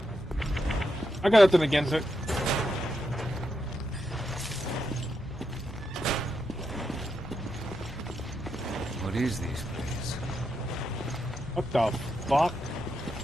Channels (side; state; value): both; normal; correlation 0.84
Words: I got nothing against it. What is this place? What the fuck?